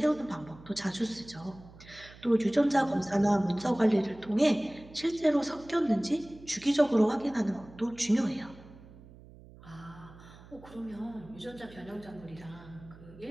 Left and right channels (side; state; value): right; noise; hum, 20 dB below the sound